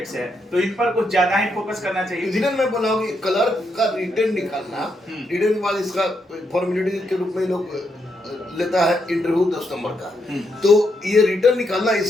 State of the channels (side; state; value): both; normal; correlation 0.80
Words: से है। तो इन पर कुछ ज्यादा ही फोकस करना चाहिए। इसलिए मैं बोला हूँ कि क्लर्क का रिटर्न निकालना, रिटर्न के बाद इसका फॉर्मेलिटी के रूप में लोग लेता है इंटरव्यू 10 नंबर का, तो ये रिटर्न निकालना